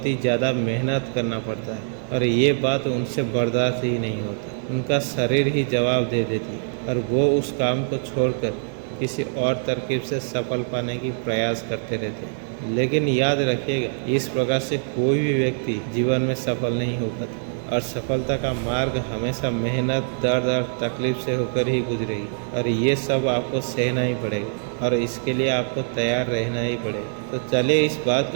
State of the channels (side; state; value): left; silent; digital silence